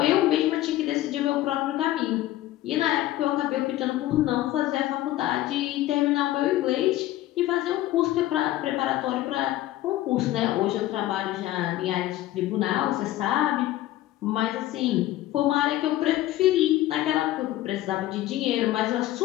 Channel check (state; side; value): quieter; right; 15.0 dB